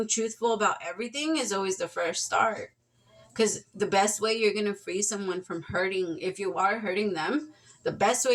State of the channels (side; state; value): both; identical; correlation 1.00